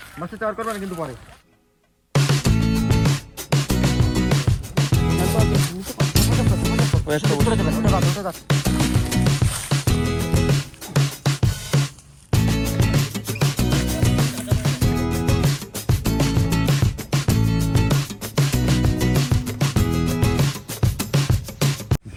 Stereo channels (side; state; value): both; identical; correlation 1.00